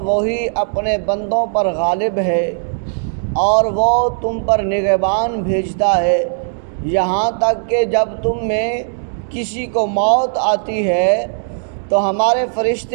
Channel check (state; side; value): silent; left; digital silence